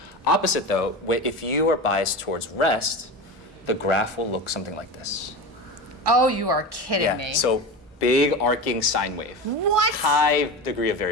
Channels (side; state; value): both; normal; correlation 0.26